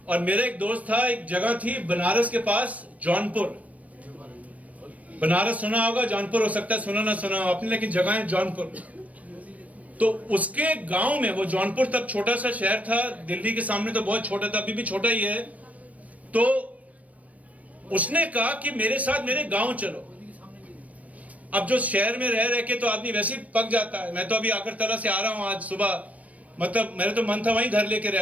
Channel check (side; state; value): left; late; 0.069 ms